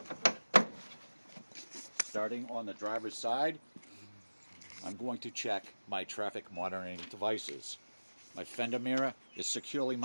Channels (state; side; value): inverted; both; correlation -1.00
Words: Starting on the driver's side, I'm going to check my traffic monitoring devices. My fender mirror is securely